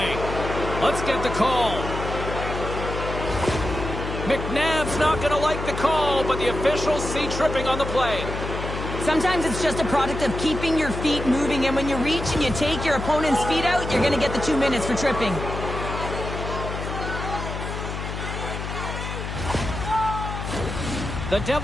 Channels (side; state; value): left; noise; hum, 6 dB below the sound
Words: Let's get the call. McNabb's not going to like the call, but the officials see tripping on the play. Sometimes it's just a product of keeping your feet moving, and when you reach and you take your opponent's feet out, you're going to get the 2 minutes for tripping. The